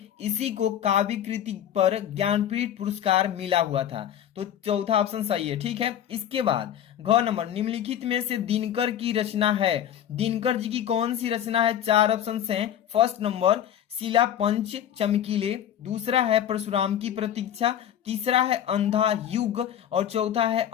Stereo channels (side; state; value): right; quieter; 10.3 dB